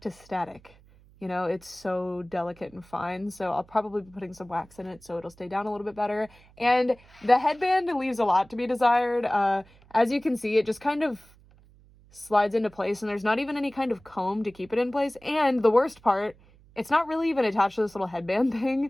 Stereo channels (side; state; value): right; noise; hum, 27 dB below the sound